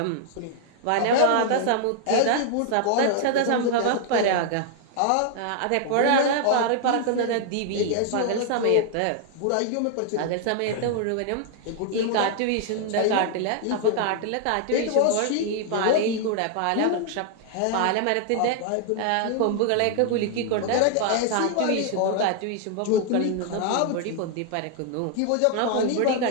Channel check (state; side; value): different; both; correlation 0.00